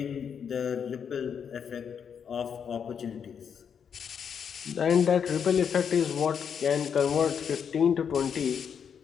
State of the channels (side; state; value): right; quieter; 7.3 dB